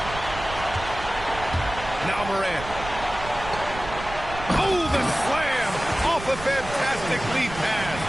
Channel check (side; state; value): right; noise; rumble, 11 dB below the sound